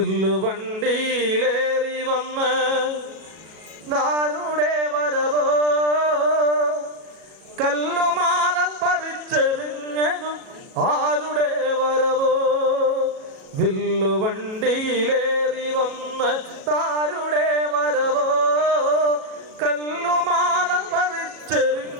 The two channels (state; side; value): late; left; 37 ms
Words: വന്ന് നാരുടെ വരവോ, കല്ലുമാല പറിച്ചെറിഞ്ഞതും ആരുടെ വരവോ. വില്ലുവണ്ടിയിലേറി വന്ന് താരുടെ വരവോ, കല്ലുമാല